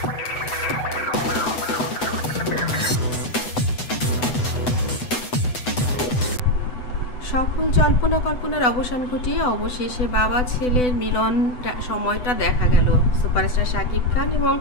জল্পনা কল্পনার অবসান ঘটিয়ে অবশেষে বাবা ছেলের মিলন সময়টা দেখা গেল। সুপারস্টার শাকিব খান এবং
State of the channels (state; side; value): late; right; 8.0 ms